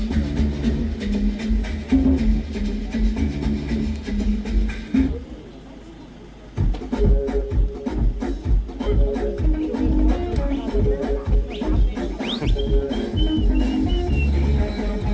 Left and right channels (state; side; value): identical; both; correlation 1.00